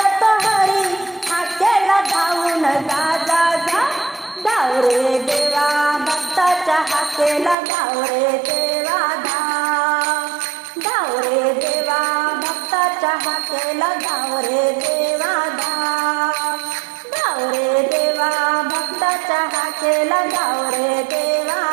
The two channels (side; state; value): left; drops out; at 7.6 s